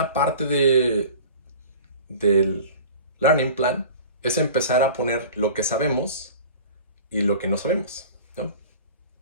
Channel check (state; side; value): inverted; both; correlation -0.40